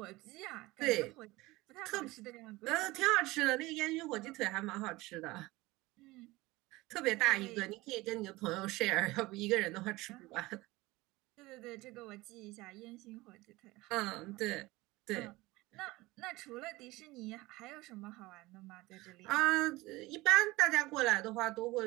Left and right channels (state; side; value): quieter; left; 20.5 dB